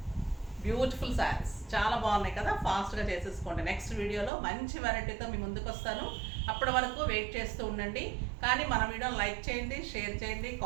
బ్యూటిఫుల్ శారీస్ చాలా బాగున్నాయి కదా, ఫాస్ట్గా చేసేసుకోండి. నెక్స్ట్ వీడియోలో మంచి వెరైటీతో మీ ముందుకు వస్తాను. అప్పటి వరకు వెయిట్ చేస్తూ ఉండండి. కానీ మన వీడియోని లైక్ చేయండి, షేర్ చేయండి,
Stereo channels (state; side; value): drops out; left; at 4.3 s